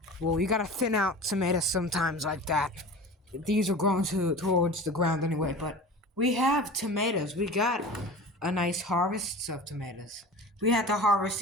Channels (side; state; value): both; normal; correlation 0.36